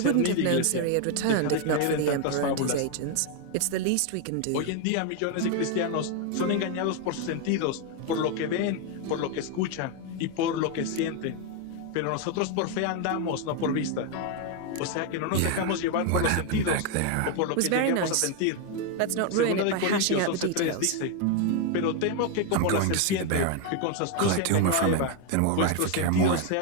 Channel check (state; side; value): different; both; correlation 0.01